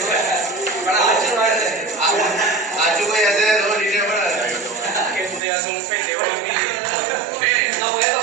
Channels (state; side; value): drops out; left; at 5.4 s